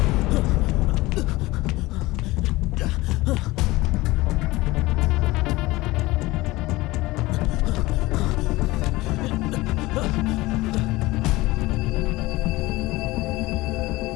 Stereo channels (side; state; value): right; quieter; 19.9 dB